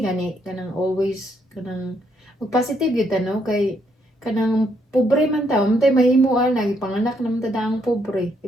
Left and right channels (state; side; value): normal; both; correlation 0.74